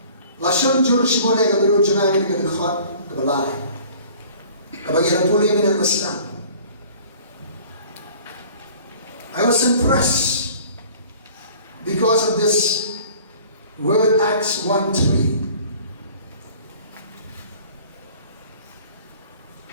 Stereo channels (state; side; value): inverted; both; correlation -0.49